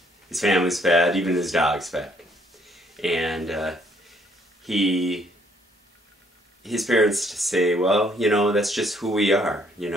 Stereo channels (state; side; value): normal; both; correlation 0.67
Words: His family's fat. Even his dog's fat. And his parents say, well, that's just who we are.